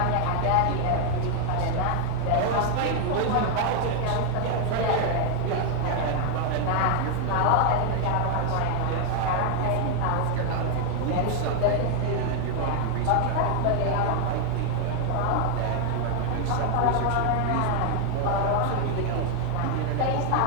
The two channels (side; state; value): both; different; correlation 0.00